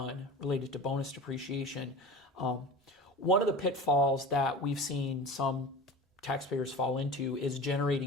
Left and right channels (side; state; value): both; normal; correlation 0.33